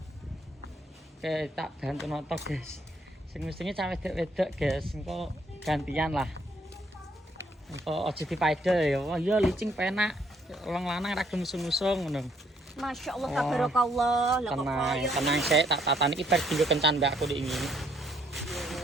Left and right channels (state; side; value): normal; both; correlation 0.68